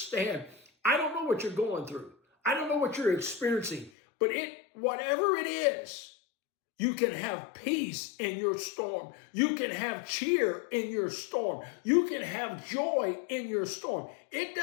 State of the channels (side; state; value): right; drops out; at 3.9 s